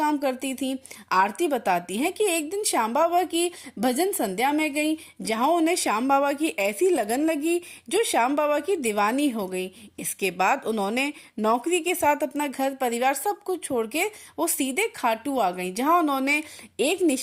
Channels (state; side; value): identical; both; correlation 1.00